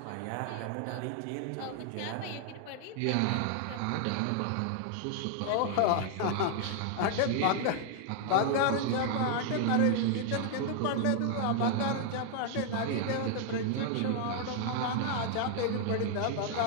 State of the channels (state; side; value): different; both; correlation 0.00